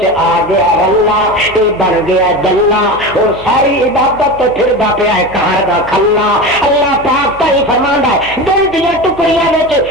آ گیا اللہ یہ بن گیا دلہ اور ساری عبادت تے پھردا پیا ہے کار دا کھلا اللہ پاک تے ہی فرماندا ہے دل دیا ٹکڑیاں وچ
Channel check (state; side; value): noise; right; hum, 19 dB below the sound